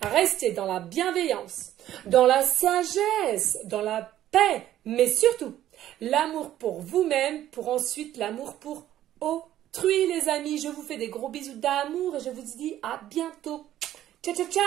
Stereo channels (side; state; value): left; quieter; 12.6 dB